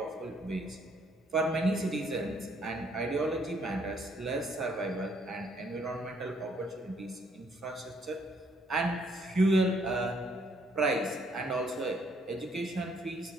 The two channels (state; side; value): normal; both; correlation 0.67